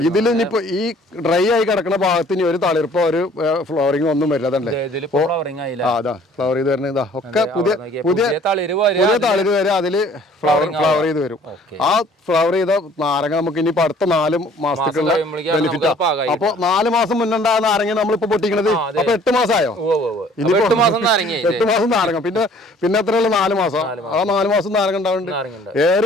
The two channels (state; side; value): normal; both; correlation 0.55